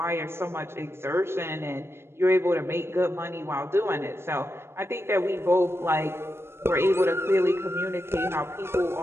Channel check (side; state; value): left; late; 0.12 ms